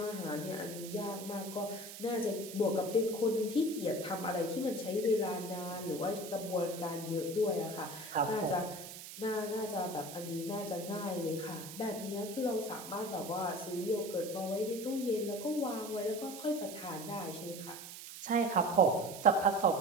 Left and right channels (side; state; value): right; noise; hiss, 12 dB below the sound